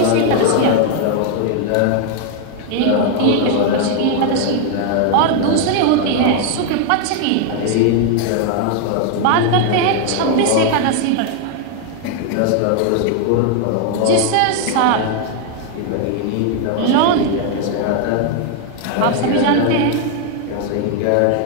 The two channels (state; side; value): different; both; correlation 0.01